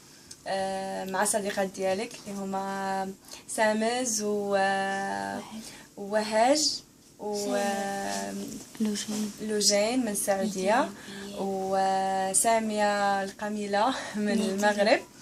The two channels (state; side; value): identical; both; correlation 1.00